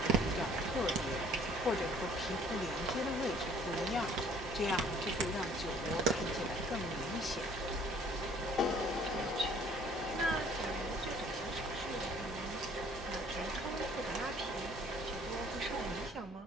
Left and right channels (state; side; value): normal; both; correlation 0.56